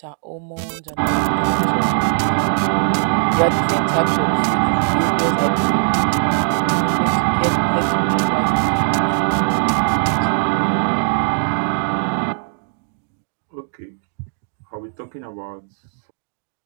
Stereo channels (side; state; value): left; silent; digital silence